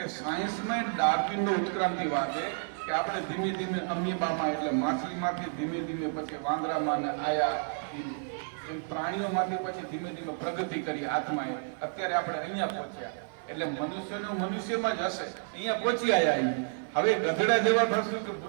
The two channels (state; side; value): silent; left; 57 dB below the other